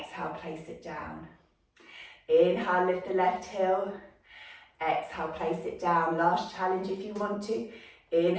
place it down. Inhale, lift the left heel. Exhale, place it down. Last challenge if you want to.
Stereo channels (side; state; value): both; identical; correlation 1.00